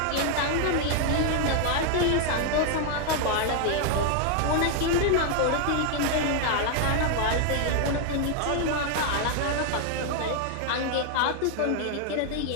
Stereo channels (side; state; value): both; different; correlation 0.00